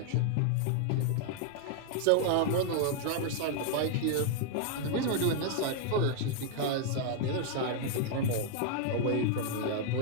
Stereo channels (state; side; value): different; both; correlation 0.00